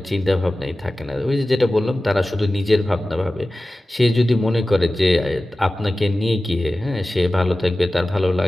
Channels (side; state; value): both; normal; correlation 0.96